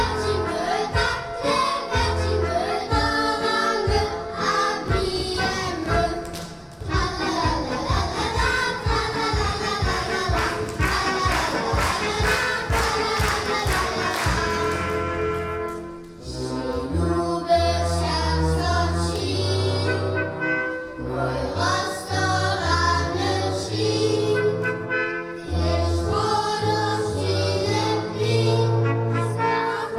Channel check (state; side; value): identical; both; correlation 1.00